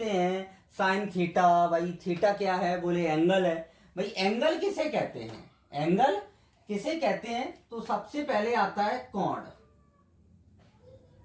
हैं साइन थीटा, भाई थीटा क्या है? बोले एंगल है। भाई एंगल किसे कहते हैं? एंगल किसे कहते हैं? तो सबसे पहले आता है कोण।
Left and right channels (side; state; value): both; identical; correlation 1.00